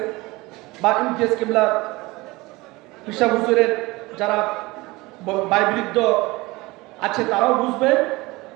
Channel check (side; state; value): left; quieter; 21.8 dB